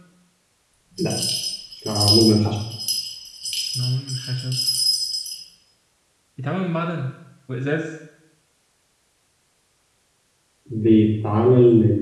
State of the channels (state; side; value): identical; both; correlation 1.00